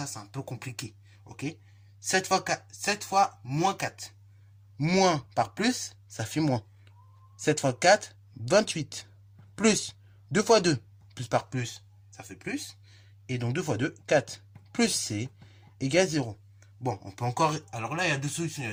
c'est un peu compliqué. Ok, 7 fois 4, 7 fois moins 4. Moins par plus, ça fait moins. 7 fois 4, 28. Plus 2 fois 2, plus par plus, ça fait plus. Et donc 2 fois 2, 4. Plus C égale 0. Bon, on peut encore... Alors là, il y a deux solutions, il y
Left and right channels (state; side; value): identical; both; correlation 1.00